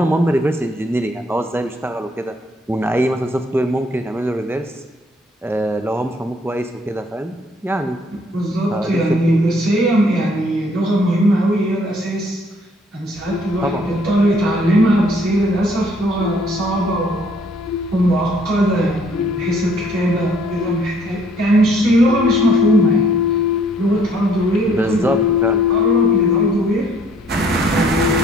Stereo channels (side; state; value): both; normal; correlation 0.63